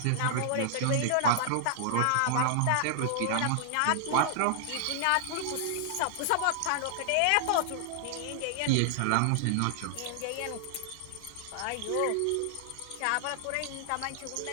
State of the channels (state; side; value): different; both; correlation -0.01